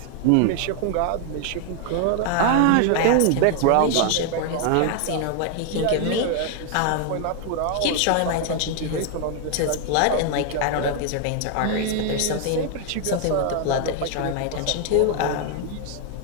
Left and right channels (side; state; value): both; different; correlation 0.00